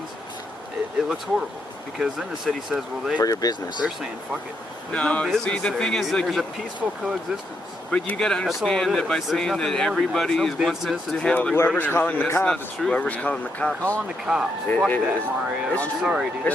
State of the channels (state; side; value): normal; both; correlation 0.79